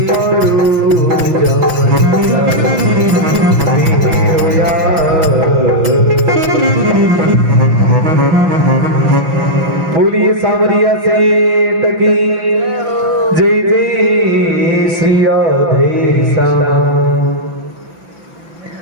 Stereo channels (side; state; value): left; late; 5.8 ms